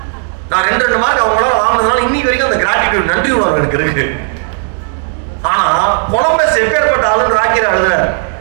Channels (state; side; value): silent; left; digital silence